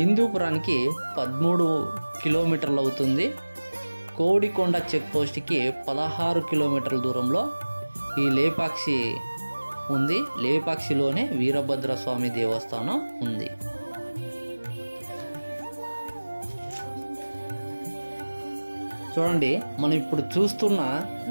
13 కిలోమీటర్లు అవుతుంది. కోడికొండ చెక్ పోస్ట్కి 16 కిలోమీటర్ల దూరంలో ఈ లేపాక్షి ఉంది. లేపాక్షిలోనే వీరభద్రస్వామి దేవస్థానం ఉంది. చూడండి, మనం ఇప్పుడు చూస్తున్న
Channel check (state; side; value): inverted; both; correlation -1.00